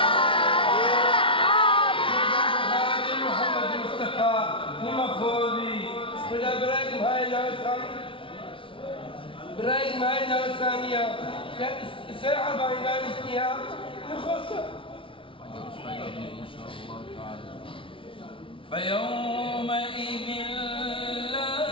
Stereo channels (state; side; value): late; right; 0.25 ms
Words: برايك معي الثانية ساعة بين الاجتهاد يخسر فيوم